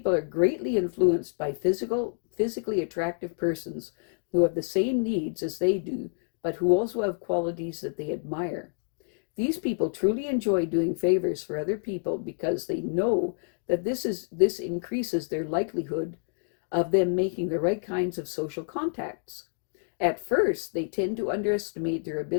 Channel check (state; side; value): silent; right; digital silence